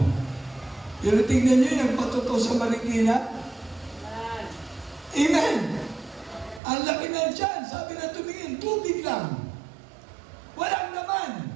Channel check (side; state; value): left; drops out; at 6.6 s